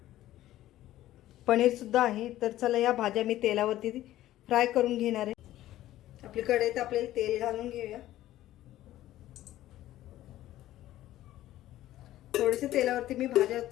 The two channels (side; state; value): right; quieter; 14.3 dB